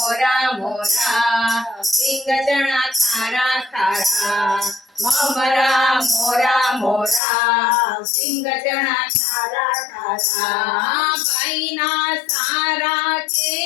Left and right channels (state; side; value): drops out; right; at 7.2 s